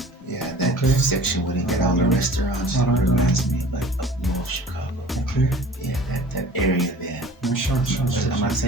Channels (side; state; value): both; normal; correlation 0.44